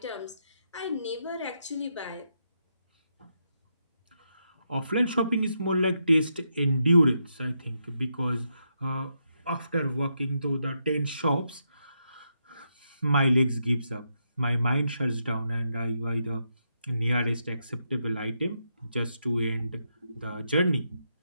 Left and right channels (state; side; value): inverted; both; correlation -0.81